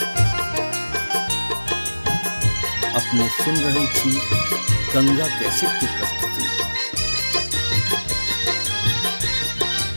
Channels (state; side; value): inverted; both; correlation -1.00